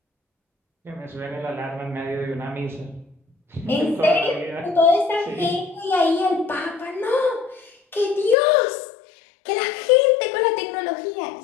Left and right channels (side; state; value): right; drops out; at 8.3 s